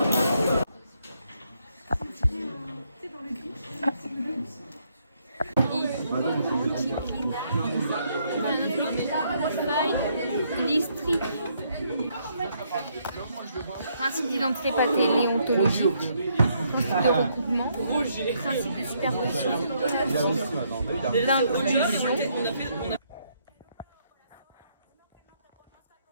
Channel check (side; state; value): both; inverted; correlation -0.72